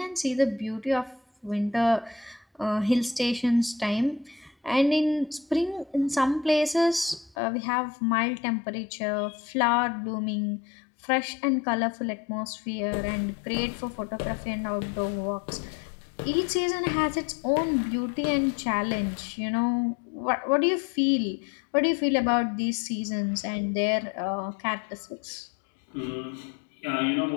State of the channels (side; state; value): right; drops out; at 7.4 s